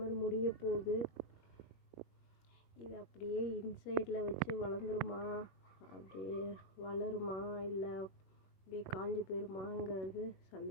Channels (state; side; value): late; right; 21 ms